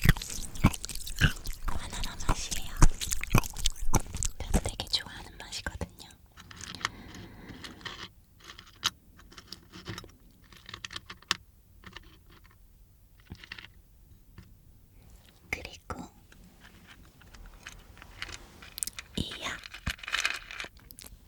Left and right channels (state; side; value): identical; both; correlation 1.00